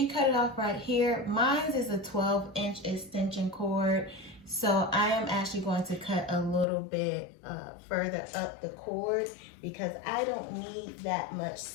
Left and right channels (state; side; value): drops out; right; at 6.7 s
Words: can cut it off right here. Mine is a 12-inch extension cord, so I am actually going to cut a little bit further up the cord because I don't need that much